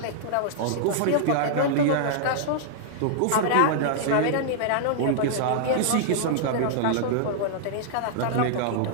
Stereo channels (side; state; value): both; different; correlation -0.01